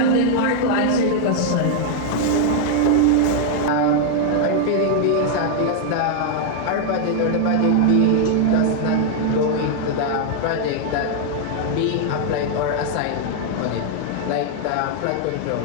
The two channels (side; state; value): both; different; correlation 0.00